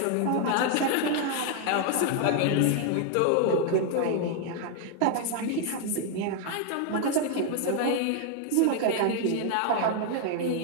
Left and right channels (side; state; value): both; different; correlation 0.00